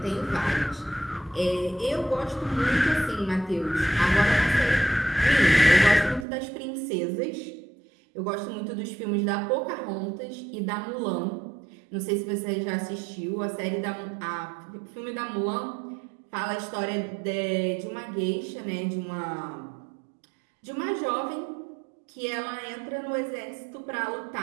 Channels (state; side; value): drops out; left; at 6.2 s